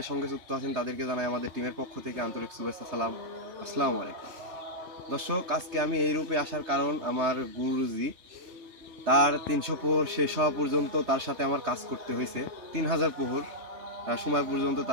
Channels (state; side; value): late; left; 3.3 ms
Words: সঙ্গে যুক্ত আছেন তাদেরকে জানাই আমাদের টিমের পক্ষ থেকে আন্তরিক শুভেচ্ছা, সালাম, আসসালামু আলাইকুম। দর্শক, আজকে আমি এই রূপে আসার কারণ, আমার গুরুজি তার 300 প্রহর শেষ হওয়া পর্যন্ত তার সাথে আমার কাজ করতে হয়েছে। 3000 প্রহর সময় পর্যন্ত